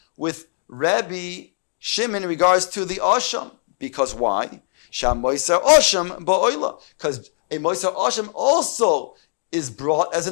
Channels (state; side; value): silent; right; digital silence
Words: with Rabbi Shimon in regards to the osham. Because why? Sham moiser osham ba'oila. Because a moiser osham also is brought as